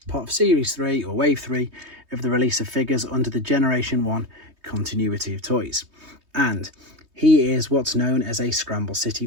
part of Series 3 or Wave 3 of the release of figures under the Generation 1 continuity of toys. And he is what's known as a Scramble City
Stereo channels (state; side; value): late; left; 3.2 ms